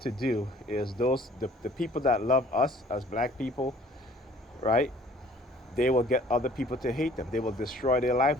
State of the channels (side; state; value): both; normal; correlation 0.54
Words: do is the people that love us as black people, right? They will get other people to hate them. They will destroy their